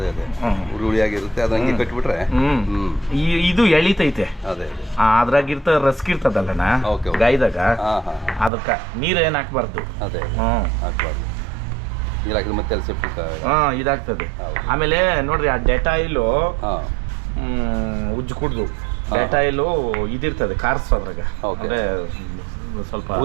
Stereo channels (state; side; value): drops out; left; at 8.5 s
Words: ಹುಳಿಯಾಗಿರುತ್ತೆ, ಅದು ಹಂಗೆ ಕಟ್ಬಿಟ್ರೆ. ಇದು ಎಳಿತೈತೆ, ಅದ್ರಾಗಿರ್ತ ರಸ್ಕಿರ್ತದಲ್ಲಣ್ಣ ಗಾಯದಾಗ, ಅದಕ್ಕೆ ನೀರು ಏನು ಹಾಕ್ಬಾರ್ದು. ಅದೇ ಹಾಕ್ಬಾರ್ದು, ನೀರು ಹಾಕಿದ್ರೆ ಮತ್ತೆ ಸೆಪ್ಟಿಕ್ ಇದಾಗ್ತದೆ. ಆಮೇಲೆ ನೋಡ್ರಿ, ಆ ಡೆಟಾಯಿಲು ಉಜ್ಜು ಕುಡ್ದು ಡೆಟಾಯಿಲು ಇದಿರ್ತದೆ ಕಾರ್ಸು, ಅದ್ರಾಗ ಅಂದ್ರೆ ಸ್ವಲ್ಪ